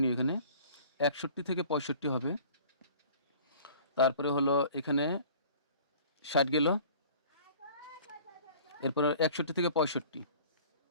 নিও। এখানে 61 থেকে 65 হবে। তারপরে হলো এখানে 60 গেল, এরপরে 61 থেকে 65,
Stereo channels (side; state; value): both; inverted; correlation -0.47